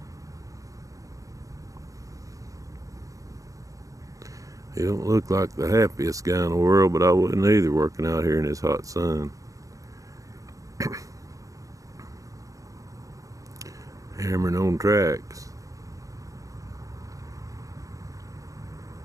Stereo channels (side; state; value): left; late; 0.16 ms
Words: He don't look like the happiest guy in the world, but I wouldn't either working out here in this hot sun. Hammering on tracks.